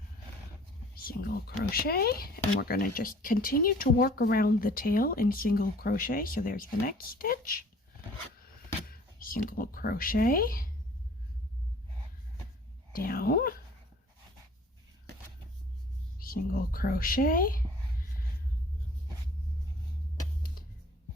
Single crochet, and we're going to just continue to work around the tail in single crochet. So there's the next stitch, single crochet, down, single crochet,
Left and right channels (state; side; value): normal; both; correlation 0.52